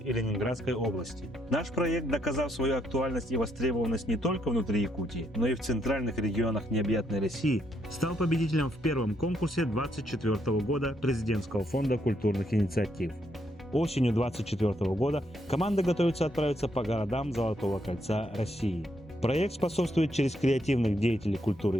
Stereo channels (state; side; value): normal; both; correlation 0.75